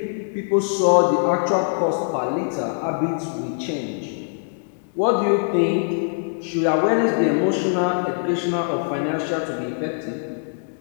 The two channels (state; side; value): silent; right; digital silence